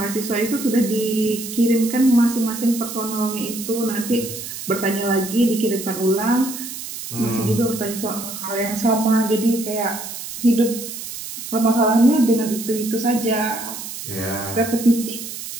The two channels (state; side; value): noise; right; hiss, 9 dB below the sound